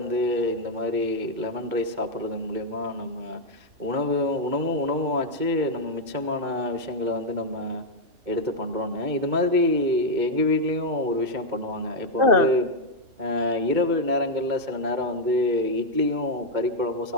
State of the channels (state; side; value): late; left; 2.2 ms